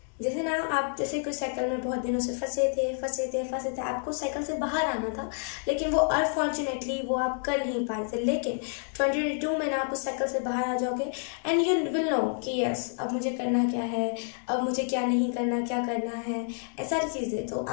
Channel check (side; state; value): right; silent; 59 dB below the other